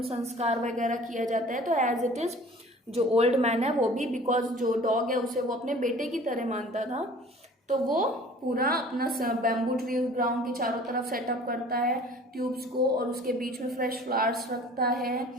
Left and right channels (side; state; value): both; normal; correlation 0.47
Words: संस्कार वगैरह किया जाता है, तो एज इट इज जो ओल्ड मैन है वो भी, बिकॉज जो डॉग है उसे वो अपने बेटे की तरह मानता था, तो वो पूरा अपना बैम्बू ट्री ग्राउंड के चारों तरफ सेटअप करता है ट्यूब्स को, और उसके बीच में फ्रेश फ्लावर्स रखता है,